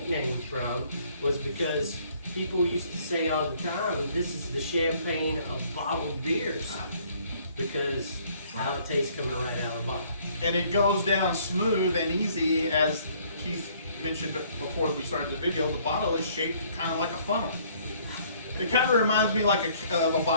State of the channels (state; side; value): inverted; both; correlation -0.61